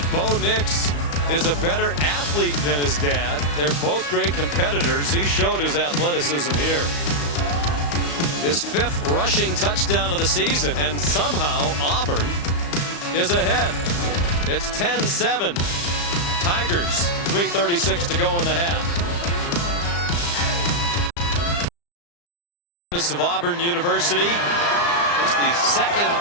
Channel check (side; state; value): right; late; 35 ms